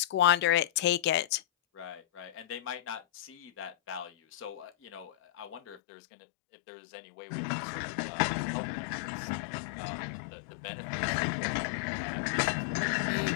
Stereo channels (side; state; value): right; drops out; at 5.8 s